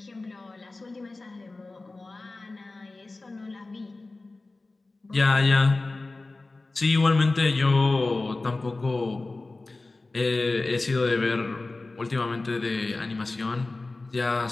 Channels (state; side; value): quieter; right; 3.3 dB